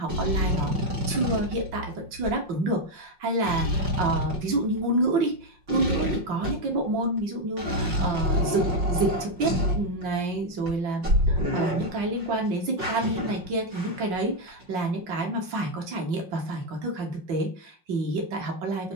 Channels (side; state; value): left; late; 5.6 ms